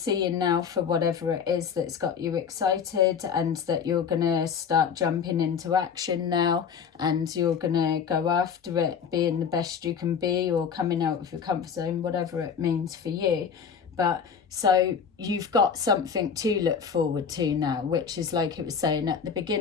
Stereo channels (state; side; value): quieter; right; 6.8 dB